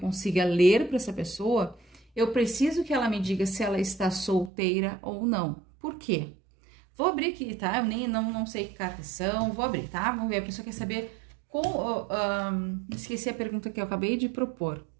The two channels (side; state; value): left; drops out; at 4.5 s